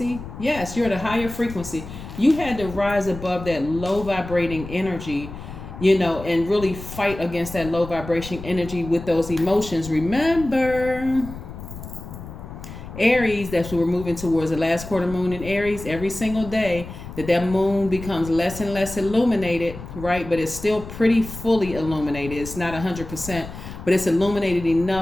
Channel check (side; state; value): left; noise; rumble, 12 dB below the sound